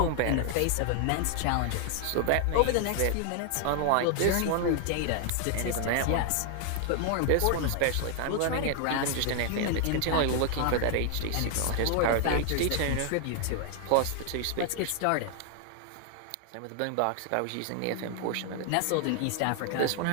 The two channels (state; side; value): different; both; correlation 0.00